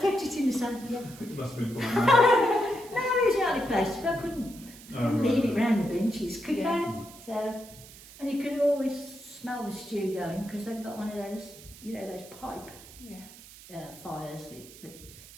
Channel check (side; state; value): right; noise; hiss, 19 dB below the sound